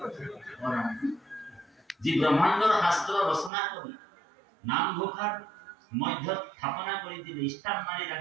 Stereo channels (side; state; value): left; drops out; at 3.5 s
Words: ঔ ৰাম। যি ব্ৰহ্মাণ্ডৰ শাস্ত্ৰ ৰচনা কৰি নামঘোষাৰ মধ্যত স্থাপনা কৰি দিলে, স্থাপ মাৰি